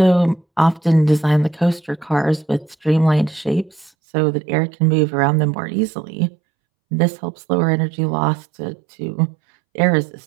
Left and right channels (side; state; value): left; drops out; at 3.9 s